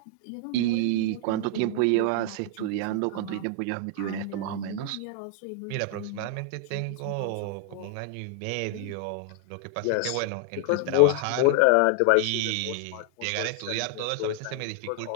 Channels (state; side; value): different; both; correlation 0.00